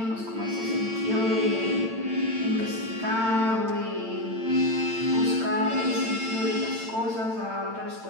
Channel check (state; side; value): late; left; 8.9 ms